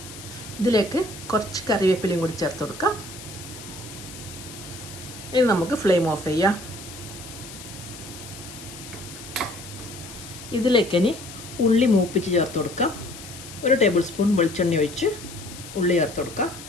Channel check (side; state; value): left; noise; hiss, 14 dB below the sound